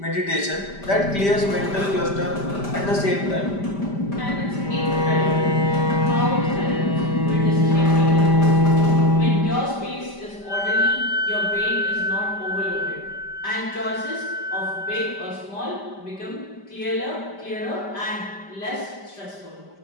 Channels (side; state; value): right; late; 5.1 ms